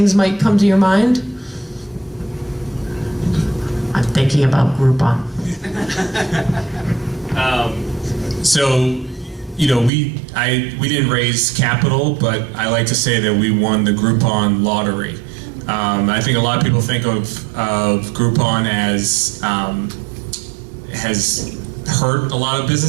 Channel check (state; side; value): drops out; left; at 9.9 s